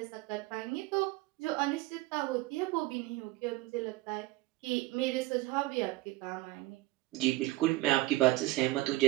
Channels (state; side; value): quieter; left; 19.2 dB